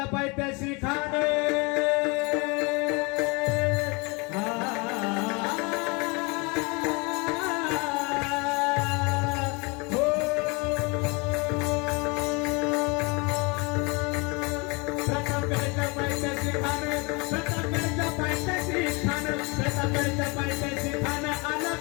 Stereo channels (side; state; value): right; quieter; 29.2 dB